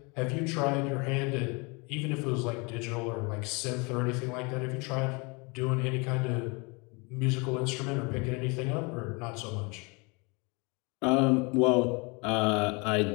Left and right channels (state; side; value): quieter; right; 29.7 dB